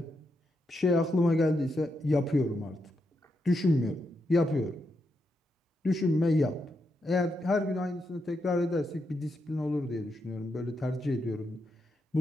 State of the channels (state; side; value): normal; both; correlation 0.83